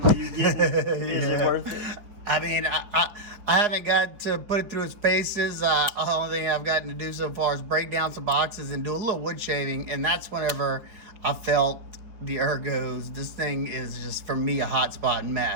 you get, is it worth it? I mean, I haven't got to put it through its paces. The only thing I've gotten to do so far is break down some boxes and do a little wood shaving, and that's whenever I felt the ergos. This thing is just, for me, a hot spot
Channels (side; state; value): left; late; 5.0 ms